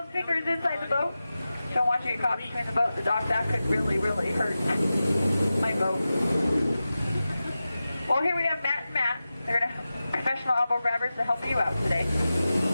fingers inside the boat. Don't want you to get caught between the boat and the dock. That could really, really hurt my boat. Well, here we have Matt and Matt. They're gonna professional elbow grabbers to help you out today.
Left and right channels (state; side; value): inverted; both; correlation -0.94